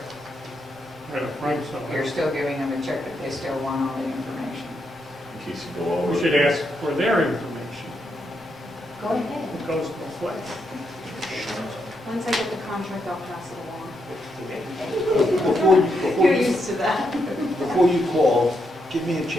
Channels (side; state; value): both; normal; correlation 0.81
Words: right up front, so. You're still giving them a check, but they still want all the information. In case you go over. We should ask for their information. Go ahead. It goes both ways. Once I get the contract, I'll pass it along. Before You're you, used to that. before you call, give me a